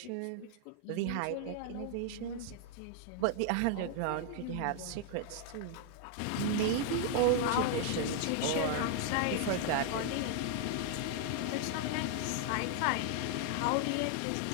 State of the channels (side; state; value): both; different; correlation 0.00